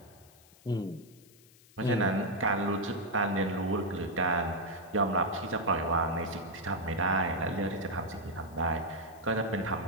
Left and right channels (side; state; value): left; noise; hiss, 26 dB below the sound